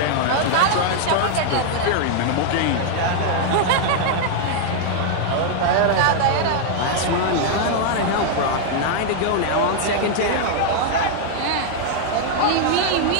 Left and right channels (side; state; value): both; different; correlation 0.00